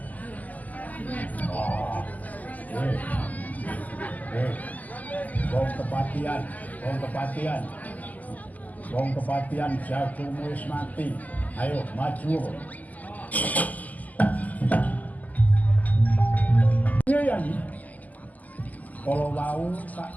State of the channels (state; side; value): late; right; 0.079 ms